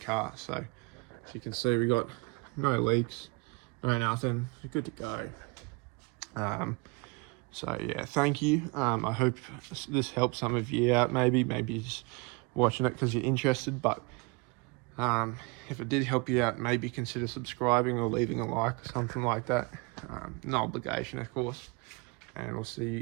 So as you can see, we got no leaks, no nothing, good to go. So yeah, thank you. I hope this helps some of you out. Maybe you're just watching it because you're interested, but if it did help you out, maybe consider subscribing or leaving a like or something like that. No obligation, of course, and we'll see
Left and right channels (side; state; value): left; quieter; 28.3 dB